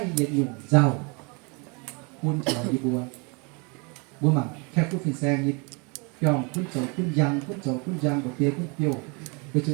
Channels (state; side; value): quieter; left; 31.8 dB